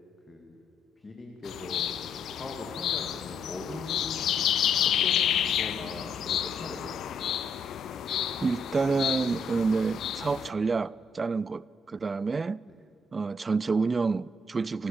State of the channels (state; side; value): normal; both; correlation 0.73